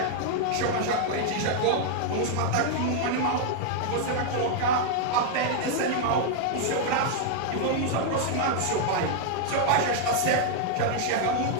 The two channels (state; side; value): different; both; correlation 0.00